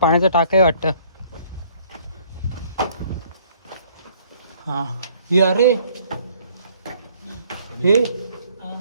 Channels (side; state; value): both; inverted; correlation -0.61